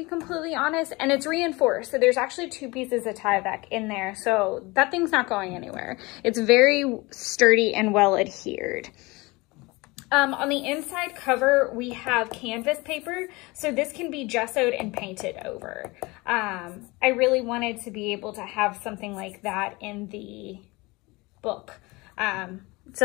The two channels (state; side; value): quieter; right; 23.9 dB